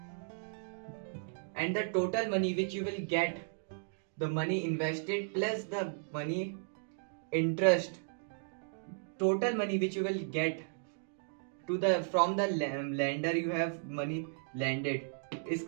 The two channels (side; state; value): left; silent; digital silence